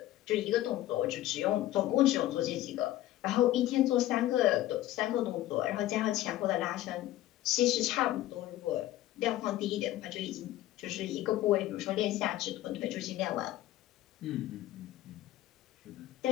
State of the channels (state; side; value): quieter; right; 14.8 dB